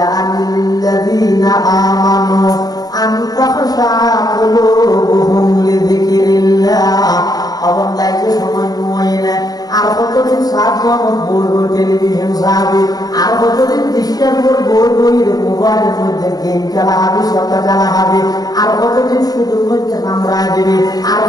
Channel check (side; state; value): right; late; 0.18 ms